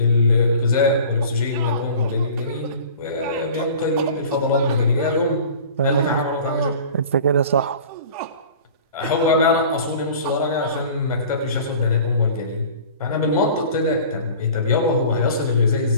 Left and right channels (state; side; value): inverted; both; correlation -0.43